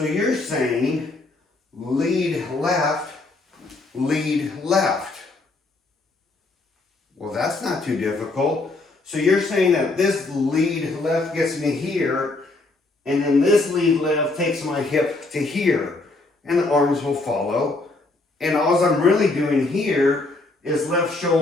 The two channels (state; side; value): quieter; right; 3.2 dB